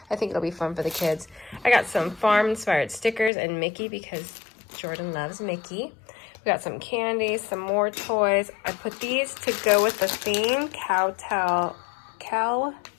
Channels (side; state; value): right; drops out; at 3.3 s